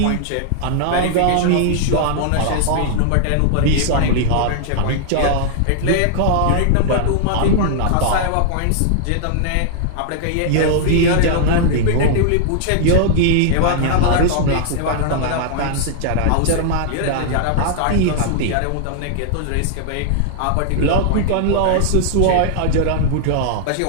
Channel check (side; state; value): both; different; correlation -0.01